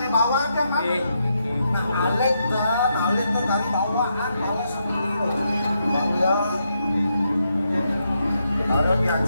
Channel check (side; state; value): both; inverted; correlation -0.81